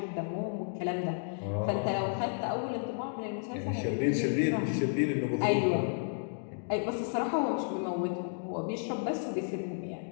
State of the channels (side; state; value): right; silent; digital silence